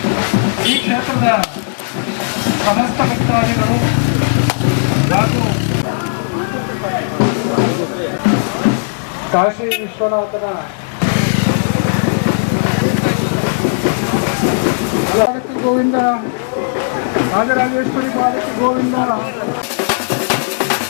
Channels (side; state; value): right; silent; digital silence